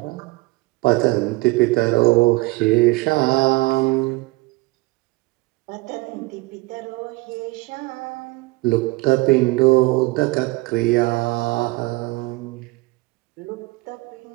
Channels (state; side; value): quieter; left; 23.1 dB